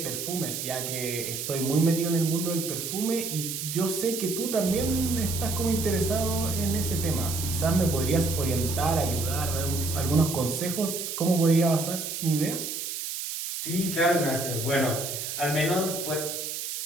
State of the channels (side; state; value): right; noise; hiss, 5 dB below the sound